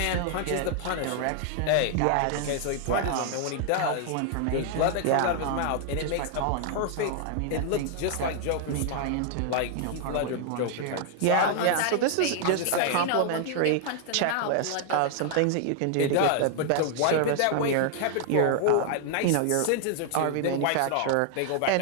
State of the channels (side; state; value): both; different; correlation 0.00